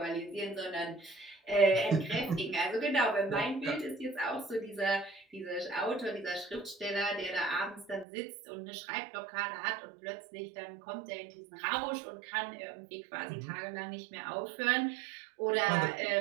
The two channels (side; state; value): left; drops out; at 8.1 s